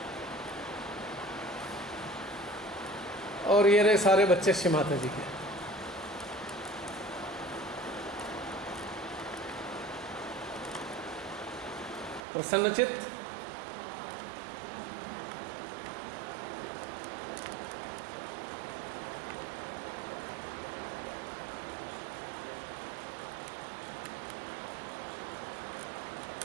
और ये रहे सारे बच्चे श्री माता जी के। प्रसन्नचित्त,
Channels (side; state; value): left; drops out; at 12.2 s